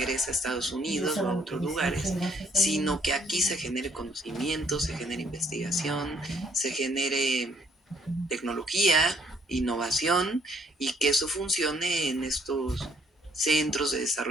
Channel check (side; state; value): both; normal; correlation 0.66